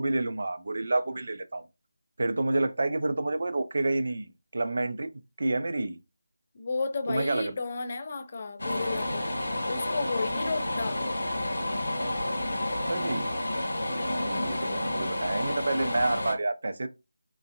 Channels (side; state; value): both; inverted; correlation -0.94